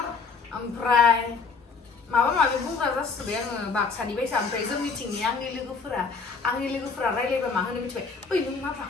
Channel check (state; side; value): quieter; right; 4.9 dB